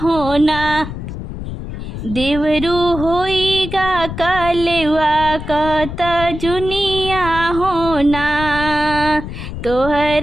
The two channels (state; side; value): noise; left; rumble, 8 dB below the sound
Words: हो ना। देवरू होइगा कलवा का तजुनिया हो ना।